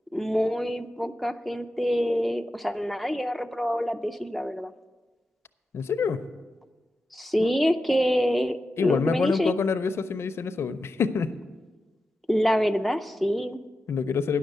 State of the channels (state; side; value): normal; both; correlation 0.90